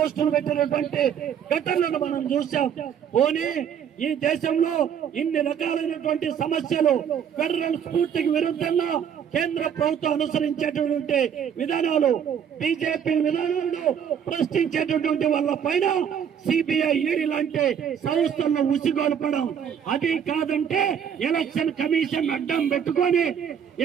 పెట్టినటువంటి ఘటనలను మనం చూసాం. పోనీ ఈ దేశంలో ఇన్ని రకాలైనటువంటి సమస్యలు ఫెడరల్ స్ఫూర్తికి విరుద్ధంగా కేంద్ర ప్రభుత్వం అనుసరించేటటువంటి విధానాలు బీజేపీ విధానాలను ప్రశ్నించేటటువంటి వాళ్ళ పైన సిబిఐ ఈడీ లాంటి సంస్థలను ఉసిగొల్పడం, అది కాదంటే ఎలక్షన్ కమిషన్ అడ్డం పెట్టుకొని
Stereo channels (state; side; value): quieter; left; 8.2 dB